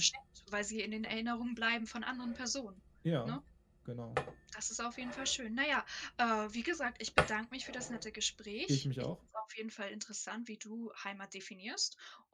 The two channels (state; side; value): identical; both; correlation 1.00